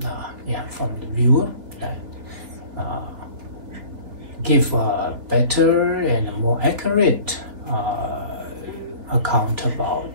the viewer, that give a better and more accurate account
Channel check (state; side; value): late; left; 3.4 ms